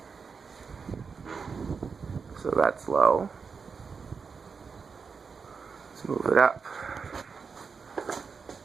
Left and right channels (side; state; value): left; quieter; 5.4 dB